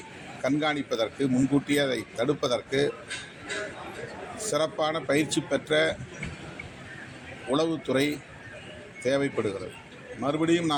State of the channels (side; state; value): both; identical; correlation 1.00